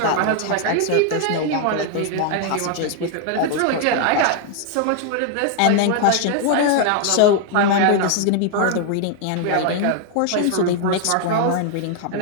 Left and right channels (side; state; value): both; different; correlation 0.00